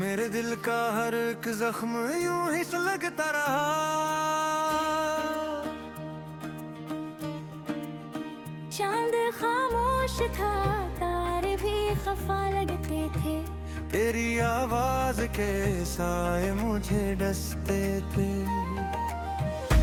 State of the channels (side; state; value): both; identical; correlation 1.00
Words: मेरे दिल का हर एक जख्म यूं ही सुलगता रहा। चांद खामोश था, तारे भी खफा लगते थे। तेरी आवाज के साए मुझे डसते थे।